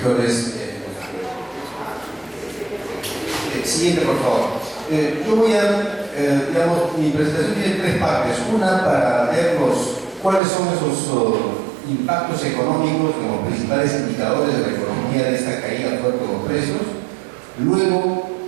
Siguiente, por favor. Yo voy a mi presentación tiene tres partes. Una para ver cuáles son esos impactos económicos como principales indicadores de la economía de esta caída fuerte de los precios. Luego,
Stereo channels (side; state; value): left; drops out; at 10.4 s